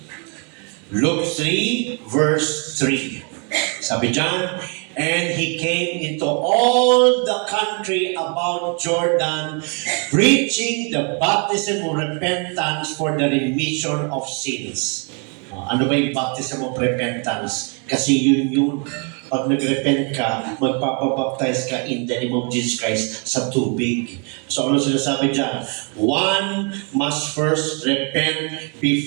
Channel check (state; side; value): quieter; left; 36.9 dB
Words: Luke 3, verse 3. Sabi dyan, and he came into all the country about Jordan, preaching the baptism of repentance for the remission of sins. Ano ba yung baptism of repentance? Kasi yun. Pag nag-repent ka, magpapabaptize ka in the name of Jesus Christ sa tubig. So ano sinasabi dyan? One must first repent